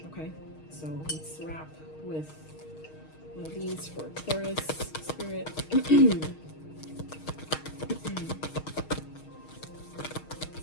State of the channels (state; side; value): late; right; 6.4 ms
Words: okay? So let's wrap with one of these for Taurus Spirit.